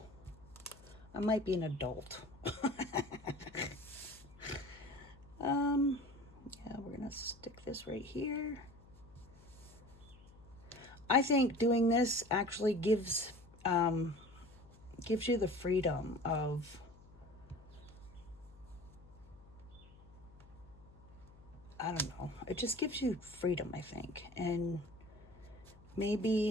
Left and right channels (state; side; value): noise; left; hum, 23 dB below the sound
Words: I might be an adult. Yeah, we're gonna stick this right here. I think doing this actually gives you the freedom of, I don't know, it just gives you freedom, I think. And